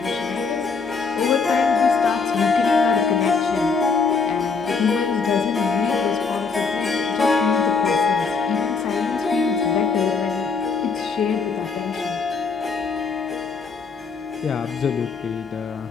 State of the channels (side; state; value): right; quieter; 5.0 dB